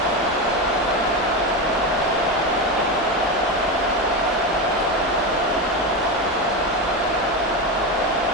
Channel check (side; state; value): right; noise; rumble, 23 dB below the sound